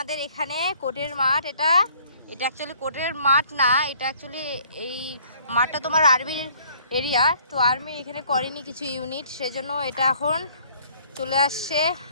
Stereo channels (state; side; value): inverted; both; correlation -0.60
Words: এখানে কোর্টের মাঠ। এটা অ্যাকচুয়ালি কোর্টের মাঠ না, এটা অ্যাকচুয়ালি এই মাঠটা তোমার আর্মির এরিয়া। তো আর্মি এখানে করেনি কিছু ইউনিট, সেজন্য এটা এখন চলে আসছে